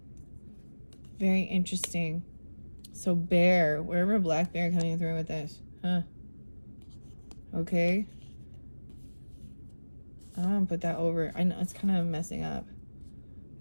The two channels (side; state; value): both; inverted; correlation -1.00